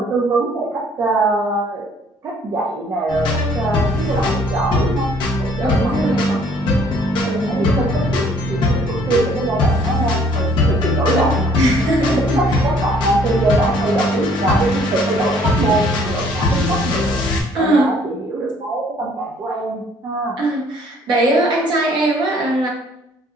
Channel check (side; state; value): both; normal; correlation 0.60